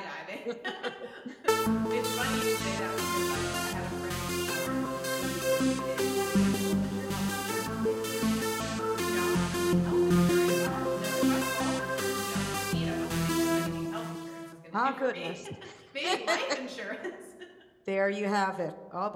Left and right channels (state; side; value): identical; both; correlation 1.00